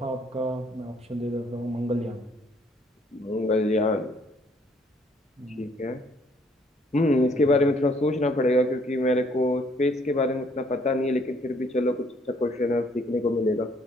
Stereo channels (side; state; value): both; normal; correlation 0.65